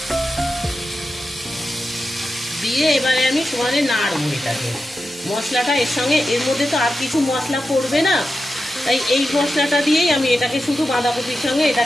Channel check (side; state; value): both; normal; correlation 0.91